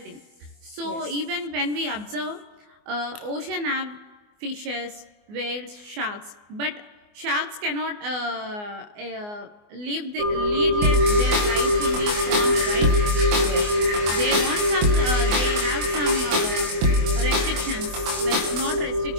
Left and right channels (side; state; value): left; late; 24 ms